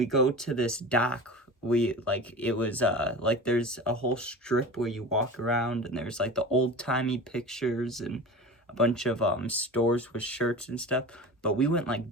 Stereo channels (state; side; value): normal; both; correlation 0.33